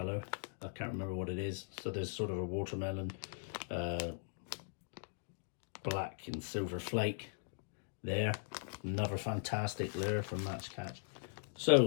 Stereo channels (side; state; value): right; silent; digital silence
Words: I can't remember what it is. So there's sort of a watermelon, black and silver flake there. Another fantastic lure from Max Catch.